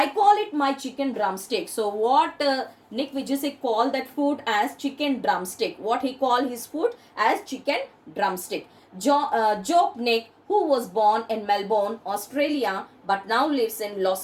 call it my chicken drumstick. So what Nick Vujicic called that food as chicken drumstick. What he called his food as chicken drumstick. Joke Nick, who was born in Melbourne, Australia, but now lives in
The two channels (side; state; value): both; identical; correlation 1.00